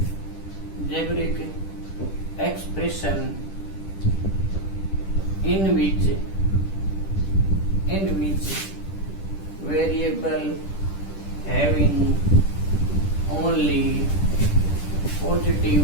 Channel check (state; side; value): late; right; 10 ms